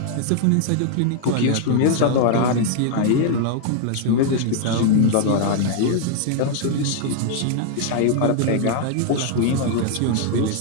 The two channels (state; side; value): different; both; correlation 0.00